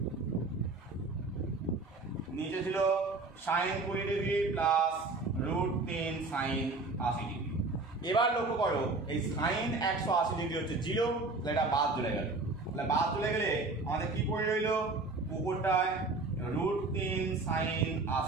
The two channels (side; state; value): left; quieter; 3.5 dB